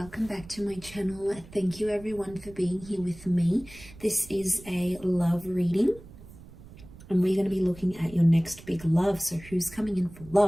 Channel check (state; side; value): noise; right; rumble, 19 dB below the sound